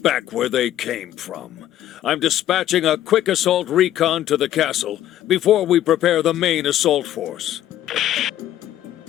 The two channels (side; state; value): right; quieter; 12.4 dB